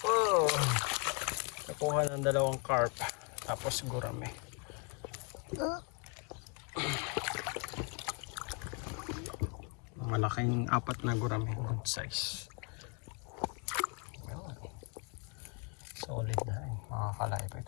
Oh, nakuha ng dalawang carp tapos gurame. Malaking apat na gurame, good size. Yun. Solid na rin mga kalaype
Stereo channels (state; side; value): quieter; right; 33.9 dB